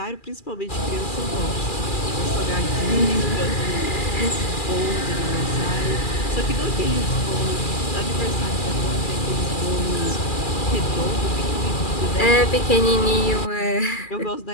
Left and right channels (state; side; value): late; right; 2.4 ms